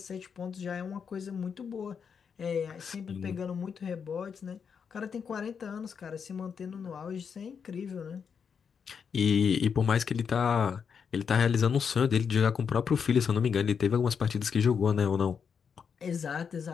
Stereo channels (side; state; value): right; quieter; 6.6 dB